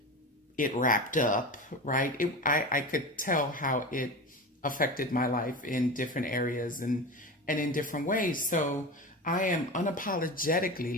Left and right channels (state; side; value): normal; both; correlation 0.27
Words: it wrapped up, right, I could tell how it affected my life in different areas and in different ways. So I am